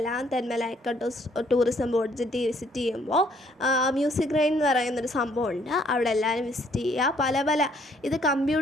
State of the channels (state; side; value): normal; both; correlation 0.65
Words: തെന്മല ടൂറിസം ബോർഡ് വിസിറ്റ് ചെയ്യുമ്പോൾ മ്യൂസിക് റെയിൻ എന്ന് പറയുന്നൊരു സംഭവമുണ്ട്. അവിടെ എല്ലാവരും വിസിറ്റ് ചെയ്യുക. ഇത്